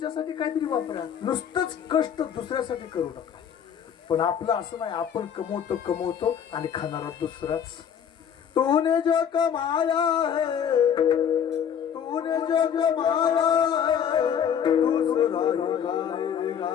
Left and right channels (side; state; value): right; quieter; 8.3 dB